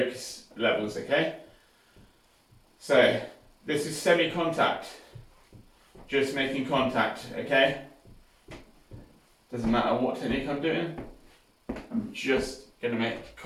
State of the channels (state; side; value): identical; both; correlation 1.00